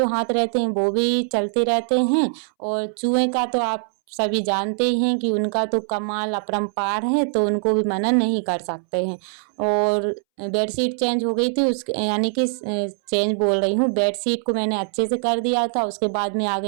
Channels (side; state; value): left; silent; 64 dB below the other